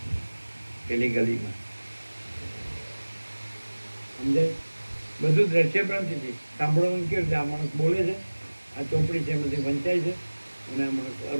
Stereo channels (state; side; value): inverted; both; correlation -1.00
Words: પેલી ગલીમાં, સમજાય? બધું દ્રશ્ય ભ્રાંતિથી સાંભળવાનું કેવું છે? આ માણસ બોલે છે, આ ચોપડી છે એમાંથી વંચાય છે અને આ માણસ